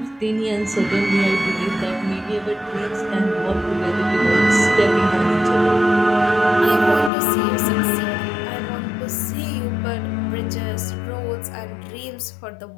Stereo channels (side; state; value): right; drops out; at 7.1 s